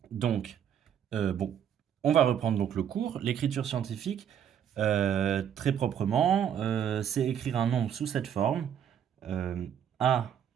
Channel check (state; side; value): quieter; left; 9.0 dB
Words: Donc, bon, on va reprendre donc le cours. L'écriture scientifique, très proprement, c'est écrire un nombre sous cette forme. euh, A,